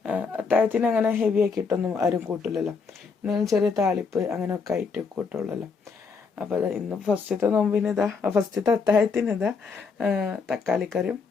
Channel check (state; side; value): quieter; right; 5.1 dB